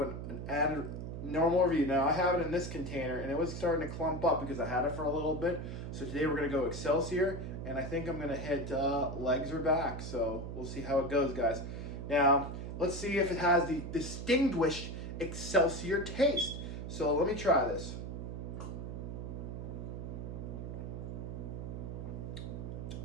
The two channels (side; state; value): right; noise; hum, 6 dB below the sound